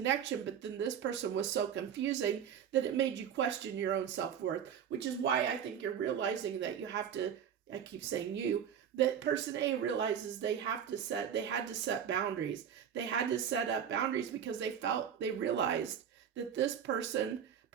but then this person was so confusing that it made you question your own self-worth, which is why I think you're realizing that you have to, I keep saying that person A realizes they had to set boundaries. They had to set up boundaries because they realized that this person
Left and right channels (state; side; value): quieter; left; 8.5 dB